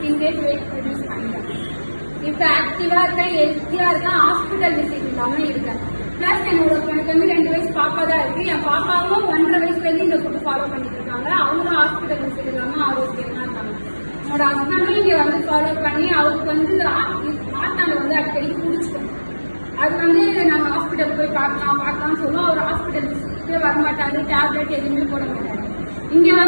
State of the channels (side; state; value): both; inverted; correlation -1.00